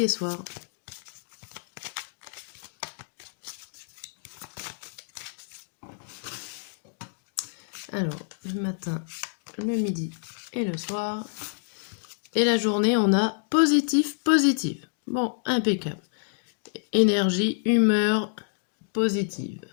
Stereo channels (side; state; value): right; silent; digital silence